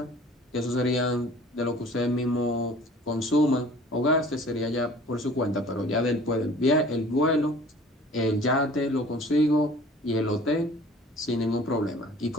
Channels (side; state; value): both; normal; correlation 0.48